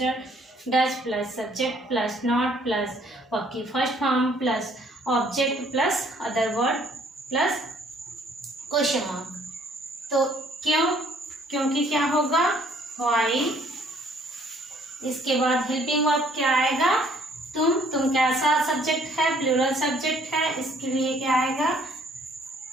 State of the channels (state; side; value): normal; both; correlation 0.62